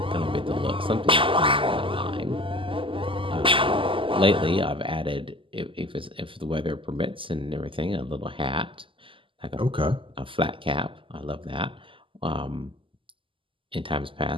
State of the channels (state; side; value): late; left; 0.25 ms